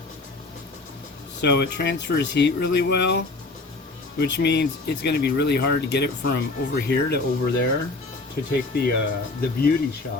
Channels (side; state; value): right; quieter; 3.4 dB